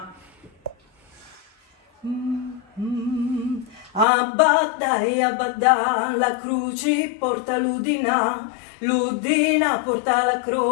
Abadda e abadda, la croce porta l'udina, l'udina porta la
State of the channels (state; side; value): drops out; right; at 4.0 s